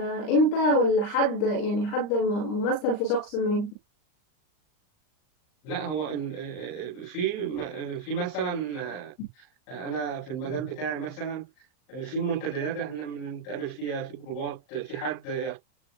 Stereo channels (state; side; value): late; right; 39 ms